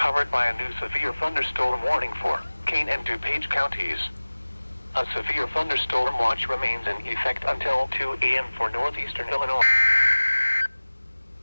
by a new severe thunderstorm warning for Kane and DuPage counties. A severe thunderstorm watch remains in effect until 2 a.m. for northeastern Illinois.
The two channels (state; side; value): inverted; both; correlation -1.00